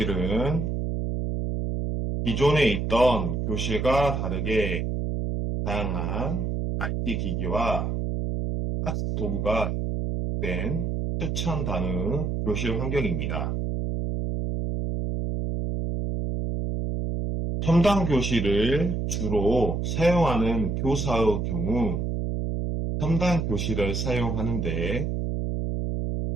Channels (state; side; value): noise; right; hum, 1 dB below the sound